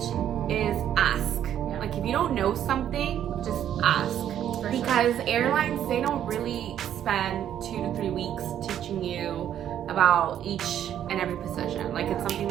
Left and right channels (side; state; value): left; quieter; 10.4 dB